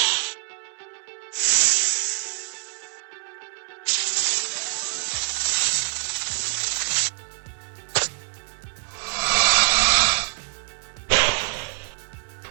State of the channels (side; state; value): left; silent; 62 dB below the other